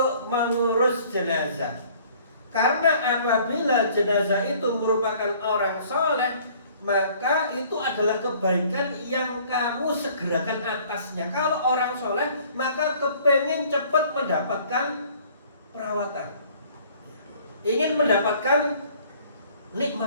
mengurus jenazah. Karena apabila jenazah itu merupakan orang soleh, maka itu adalah kebaikan yang kamu segerakan atasnya. Kalau orang soleh, maka kepengen cepat mendapatkan perawatan, ingin mendapatkan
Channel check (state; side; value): inverted; both; correlation -0.55